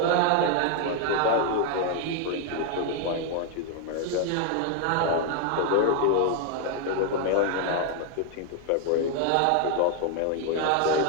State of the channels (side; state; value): both; different; correlation 0.00